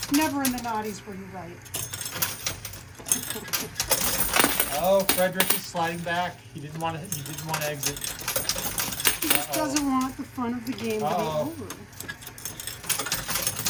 Never in the naughties were you right. Oh, Frederick is sliding back. He didn't want to exit. He just doesn't want the fun of the game to be over.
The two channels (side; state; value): both; identical; correlation 1.00